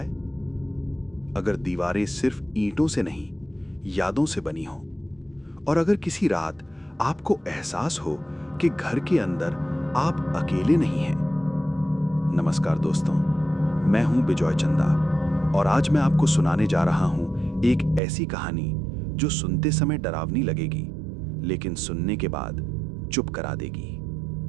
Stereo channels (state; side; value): drops out; left; at 18.0 s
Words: अगर दीवारें सिर्फ ईंटों से नहीं, यादों से बनी हो, और अगर किसी रात आपको एहसास हो कि घर के अंदर आप अकेले नहीं हैं। नमस्कार दोस्तों, मैं हूं बिजॉय चंदा और आज मैं आपको सुनाने जा रहा हूं एक ऐसी कहानी जो सुनते समय डरावनी लगेगी, लेकिन सुनने के बाद चुप करा